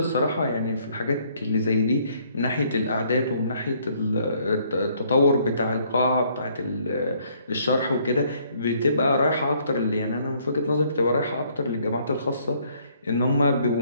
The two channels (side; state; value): both; inverted; correlation -0.65